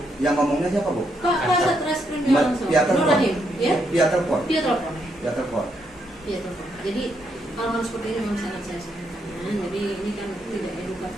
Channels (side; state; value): both; normal; correlation 0.77